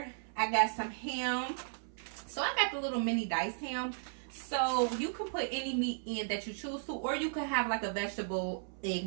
I got some ham. So I got the little mini diced ham. So you can put any meat in that you choose to, or you could have like a vegetable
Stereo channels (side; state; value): left; silent; 54 dB below the other